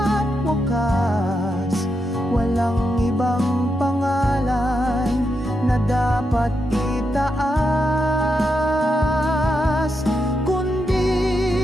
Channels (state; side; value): normal; both; correlation 0.84